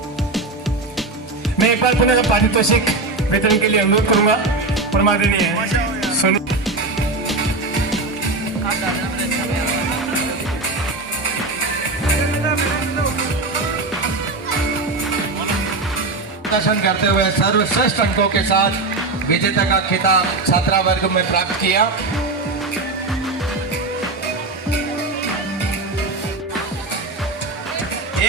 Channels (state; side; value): quieter; left; 3.3 dB